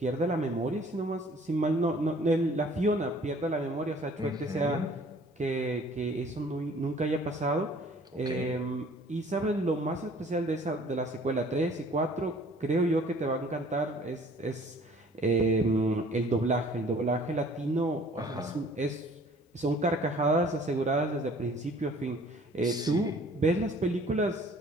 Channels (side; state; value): both; normal; correlation 0.54